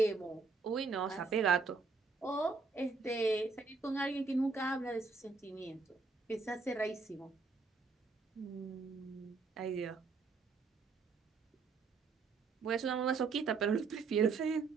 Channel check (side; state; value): left; quieter; 4.3 dB